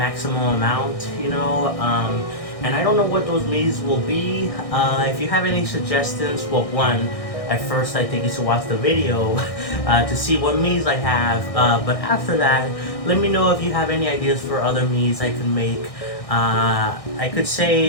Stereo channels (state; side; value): late; right; 1.6 ms